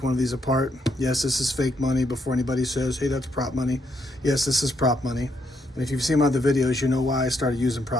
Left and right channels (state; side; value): normal; both; correlation 0.76